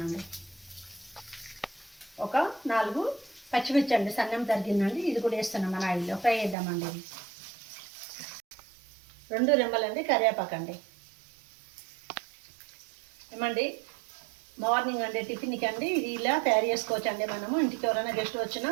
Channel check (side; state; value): left; drops out; at 6.6 s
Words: ఒక 4 పచ్చిమిర్చి అండి సన్నం తరిగిందండి, ఇది కూడా వేస్తున్నాం మన ఆయిల్లో ఫ్రై చేద్దామండి. ఇది 2 రెమ్మలండి కరివేపాకండి. ఏమండి మార్నింగ్ అండి టిఫిన్కి అండి ఇది ఇలా తయారు చేసుకోవచ్చు అండి. మనము ఇంటికి ఎవరైనా గెస్ట్ వచ్చినా